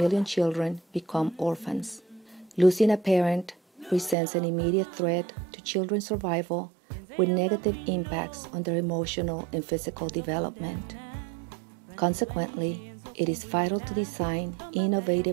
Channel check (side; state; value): left; drops out; at 4.2 s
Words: children become orphans. Losing a parent presents an immediate threat to children's survival with negative impacts on their emotional and physical development. Consequently, it is vital to design